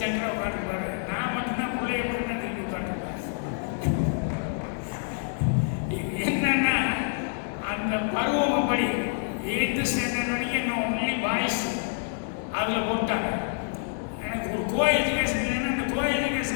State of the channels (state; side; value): silent; right; 60 dB below the other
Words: சங்கராக உட்காந்துருப்பாங்க. நான் மட்டும்தான் பிள்ளைய மட்டும் தான் திரும்பி உட்காந்துருப்பேன். என்னன்னா அந்த பருவம் படி 8th ஸ்டாண்டர்ட் வரைக்கும் இன்னும் ஒன்லி பாய்ஸ் அதில் போட்டாங்க. எனக்கு ஒரு கோ எஜுகேஷன் இல்லைன்னா அந்த கோ